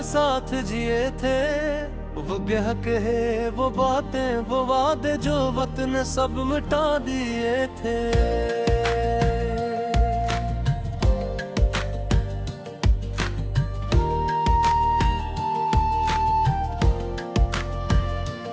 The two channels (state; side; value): identical; both; correlation 1.00